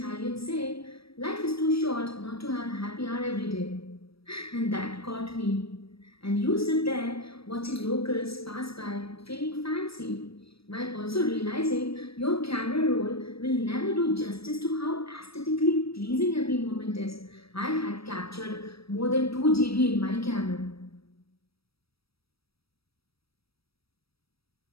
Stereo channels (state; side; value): late; right; 0.76 ms